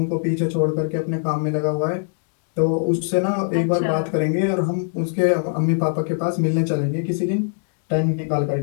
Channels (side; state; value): right; silent; 65 dB below the other